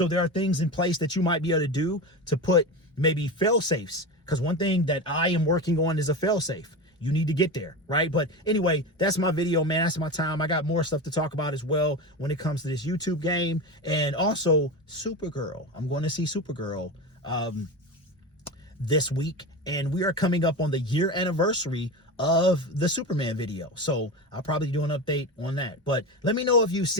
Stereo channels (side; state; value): both; normal; correlation 0.23